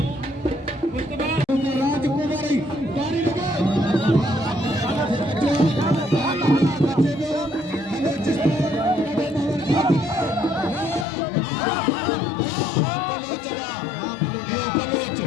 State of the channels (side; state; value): right; drops out; at 11.1 s